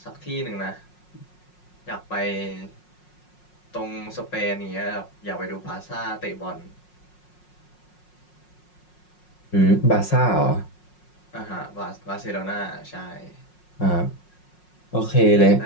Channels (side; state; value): right; late; 5.5 ms